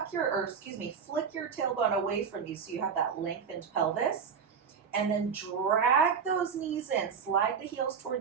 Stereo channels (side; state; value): left; quieter; 6.5 dB